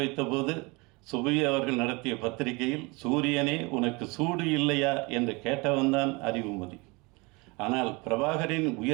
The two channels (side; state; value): left; quieter; 26.6 dB